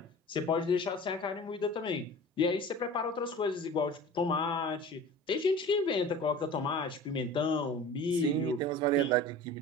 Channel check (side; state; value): both; normal; correlation 0.39